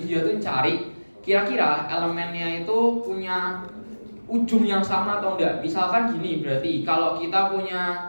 tuh cari kira-kira elemennya itu punya ujung yang sama atau enggak. Misalkan gini, berarti kalau kita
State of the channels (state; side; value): inverted; both; correlation -1.00